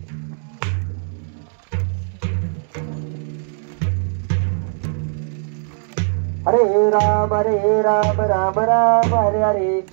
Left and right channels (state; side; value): silent; left; digital silence